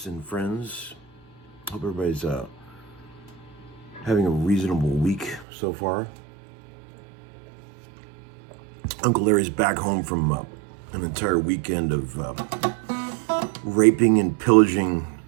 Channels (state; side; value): drops out; left; at 5.5 s